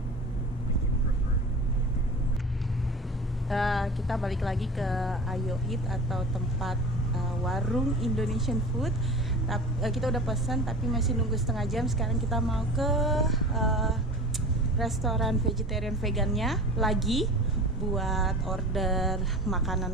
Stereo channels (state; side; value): normal; both; correlation 0.36